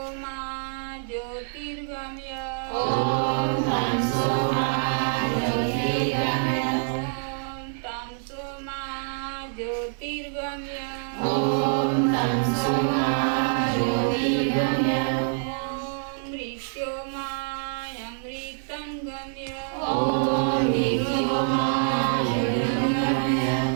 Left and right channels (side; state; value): left; silent; digital silence